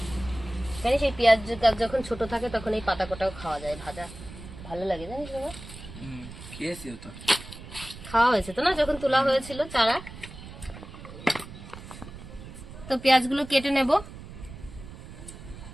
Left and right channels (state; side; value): noise; right; rumble, 14 dB below the sound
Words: জানিস এই পেঁয়াজ যখন ছোট থাকে তখন এই পাতা কোটাও খাওয়া যায়, ভাজা ভালো লাগে, জানিস বাবা? খেয়েছি তো, খাওয়া হয়েছে তো না, যখন তোলা হয়েছিল চারা। তো পেঁয়াজগুলো কেটে নেব।